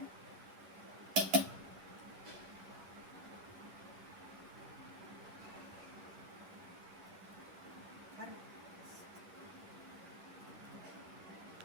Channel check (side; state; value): left; late; 11 ms